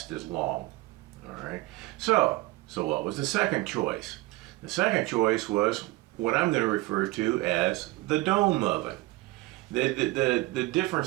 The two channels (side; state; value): left; quieter; 20.2 dB